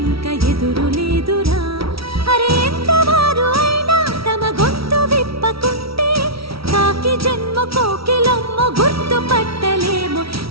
ఎదురు లేదురా. అరే ఎంతవారు అయినా తమ గొంతు విప్పకుంటే కాకి జన్మ కోకిలమ్మ గుర్తుపట్టలేము.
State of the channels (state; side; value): late; left; 0.75 ms